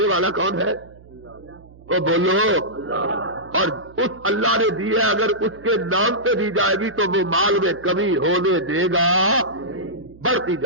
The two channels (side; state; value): right; noise; hum, 23 dB below the sound